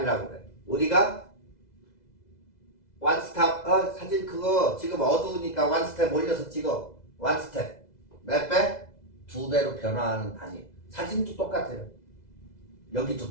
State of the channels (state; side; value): late; right; 2.0 ms